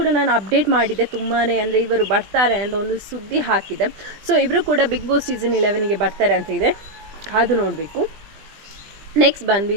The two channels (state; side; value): late; left; 20 ms